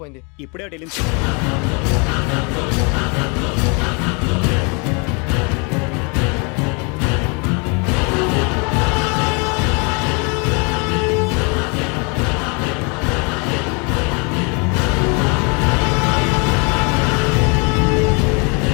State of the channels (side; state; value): right; quieter; 33.2 dB